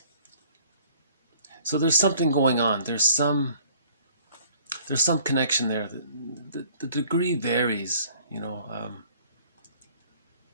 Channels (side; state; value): both; inverted; correlation -0.55